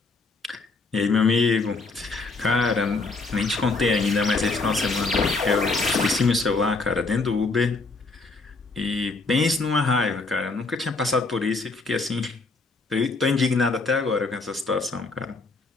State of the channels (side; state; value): right; quieter; 3.7 dB